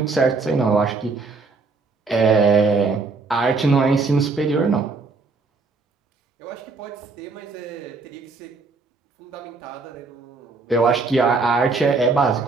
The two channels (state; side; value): quieter; left; 4.1 dB